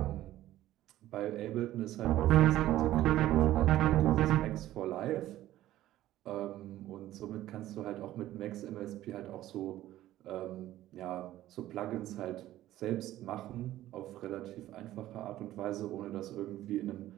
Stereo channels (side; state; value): left; quieter; 14.3 dB